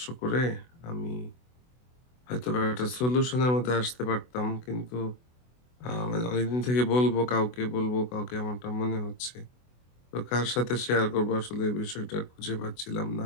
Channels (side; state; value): right; late; 24 ms